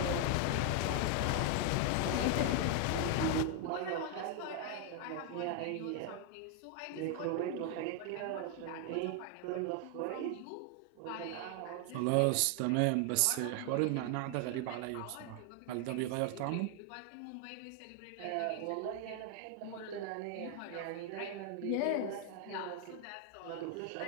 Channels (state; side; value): different; both; correlation 0.00